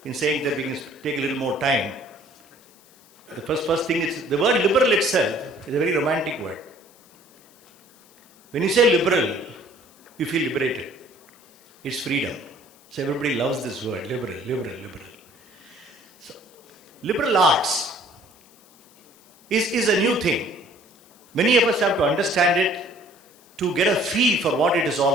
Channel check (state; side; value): noise; left; hiss, 28 dB below the sound